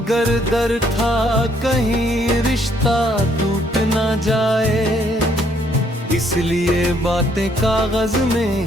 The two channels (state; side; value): normal; both; correlation 0.68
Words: डर था कहीं रिश्ता टूट ना जाए, इसलिए बातें कागज में